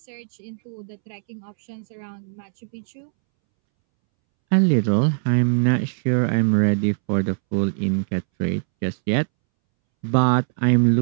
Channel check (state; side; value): silent; left; 64 dB below the other